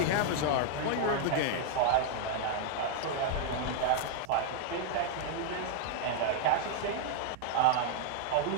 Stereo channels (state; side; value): different; both; correlation 0.00